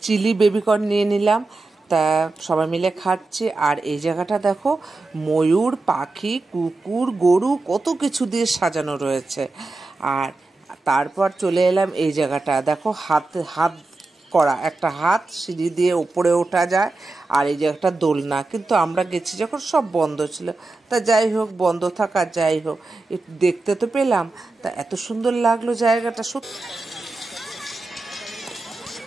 চিলি বেবিকর্ন নিয়ে নিলাম। তা সবাই মিলে খাচ্ছি। আর এই জায়গাটা দেখো, ময়ূর পাখি কুকুর গরু কত কিছু দিয়ে সাজানো রয়েছে। আর তারপর চলে এলাম এই জায়গাটা, দেখো হাত হাত করা একটা হাত, সিঁড়ি দিয়ে উপরে ওঠা যায়। আর এই যে একটা দোলনা, কিন্তু আমরা গেছি যখন সব বন্ধ ছিল। তা যাই হোক, বন্ধ থাকা যাই হোক, একটু দেখতে তো পেলাম। তা এত সুন্দর লাগলো জায়গাটা সত্যি।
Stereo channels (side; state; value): left; quieter; 3.3 dB